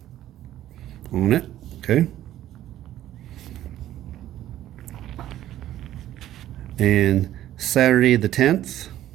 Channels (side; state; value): left; quieter; 12.9 dB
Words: on it. Okay. And Saturday the 10th,